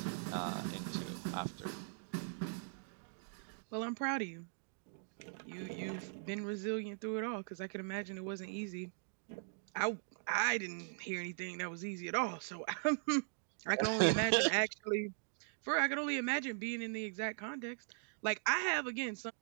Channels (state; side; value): silent; left; digital silence